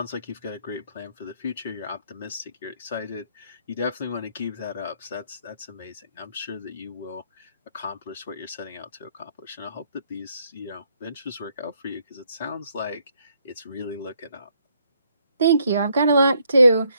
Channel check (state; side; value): inverted; both; correlation -0.71